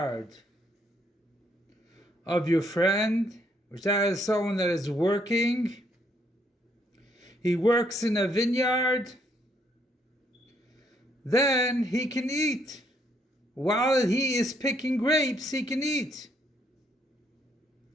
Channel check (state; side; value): normal; both; correlation 0.71